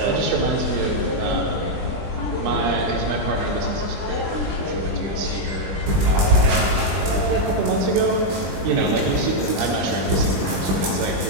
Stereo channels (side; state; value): left; late; 20 ms